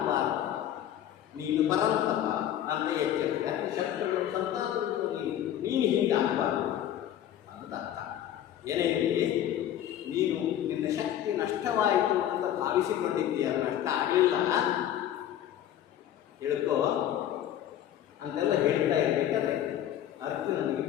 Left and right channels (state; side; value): quieter; right; 11.2 dB